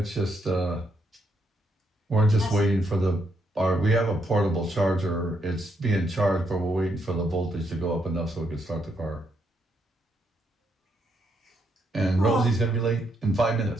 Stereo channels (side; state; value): both; normal; correlation 0.76